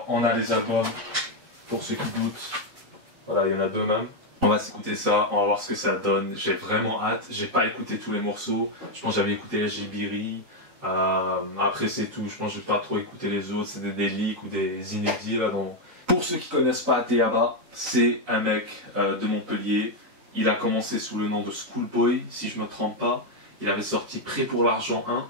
on a les albums, pour ceux qui doutent, voilà, il y en a deux même. On va s'écouter ça, on va voir ce que ça donne. J'ai vraiment hâte. J'ai pas écouté tous les morceaux. Je pense que j'avais écouté Jibiri. Après c'est tout. Je pense que j'ai pas trop écouté les autres. C'est des leaks ou des inédits là. Pour ceux qui connaissent pas Ateyaba, c'est un mec de Montpellier. Il a commencé sous le nom de Schoolboy, si je me trompe pas. Il avait sorti Prêt pour l'argent 1,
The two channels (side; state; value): left; late; 3.9 ms